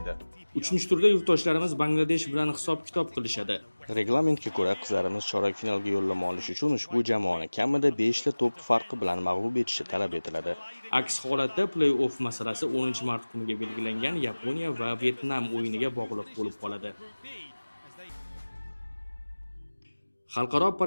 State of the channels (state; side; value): inverted; both; correlation -1.00